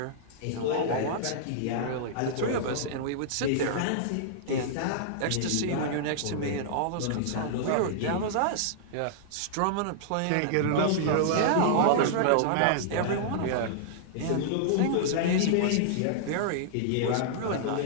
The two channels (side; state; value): both; different; correlation -0.01